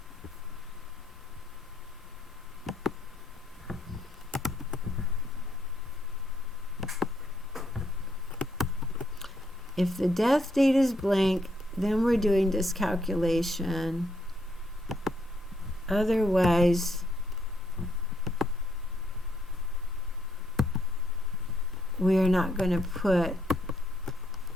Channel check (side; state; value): both; normal; correlation 0.74